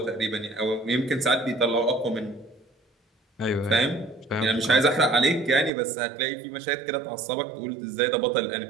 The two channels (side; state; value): left; drops out; at 5.7 s